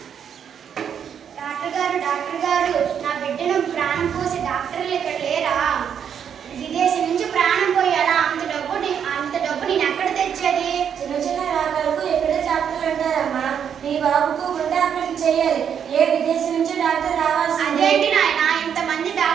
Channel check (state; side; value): quieter; left; 8.1 dB